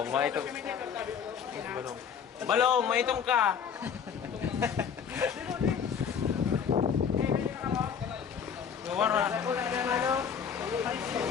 maitong. Balong, maitong ka. Gawara.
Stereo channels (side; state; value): right; quieter; 7.3 dB